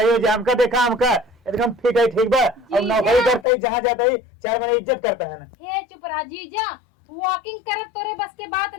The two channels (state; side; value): drops out; right; at 3.5 s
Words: हो जाए हमका देखा हमका एकदम ठीक बा और नौकरी करते ही जहाँ जाता ही 4 महीने इज्जत करता है ना। हे चुप रहा जीजा वॉकिंग करत तोरे बस के बात